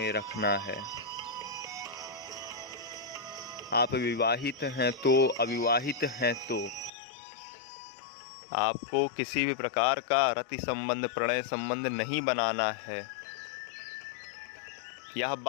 रखना है। आप विवाहित हैं तो, अविवाहित हैं तो आपको किसी भी प्रकार का रति संबंध, प्रणय संबंध नहीं बनाना है। यह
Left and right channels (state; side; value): drops out; right; at 6.9 s